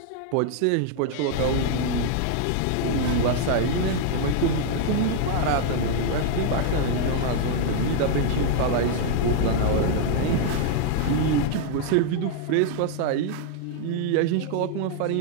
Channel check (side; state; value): both; different; correlation 0.00